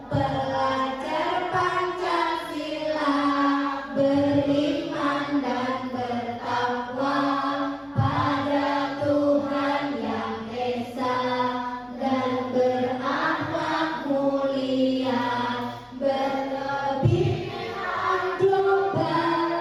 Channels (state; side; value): identical; both; correlation 1.00